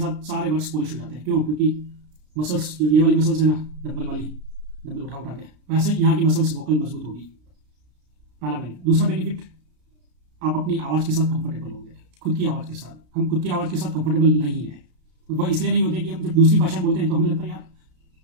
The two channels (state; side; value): late; left; 33 ms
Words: सारे वर्ड्स पॉलिश हो जाते हैं। क्यों? क्योंकि मसल्स जो ये वाली मसल्स है ना, डंबल उठा उठा के, वैसे ही यहाँ की मसल्स वोकल मजबूत होगी। पहला बेनिफिट। दूसरा बेनिफिट, आप अपनी आवाज़ के साथ कंफर्टेबल होंगे, खुद की आवाज़ के साथ। हम खुद की आवाज़ के साथ कंफर्टेबल नहीं है। वह इसलिए नहीं होते कि हम जब दूसरी भाषा बोलते हैं तो हमें लगता है यार